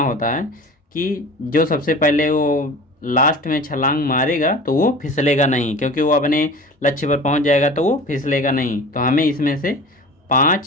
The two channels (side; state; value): both; normal; correlation 0.38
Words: होता है कि जो सबसे पहले वो लास्ट में छलांग मारेगा तो वो फिसलेगा नहीं, क्योंकि वो अपने लक्ष्य पर पहुंच जाएगा तो वो फिसलेगा नहीं। तो हमें इसमें से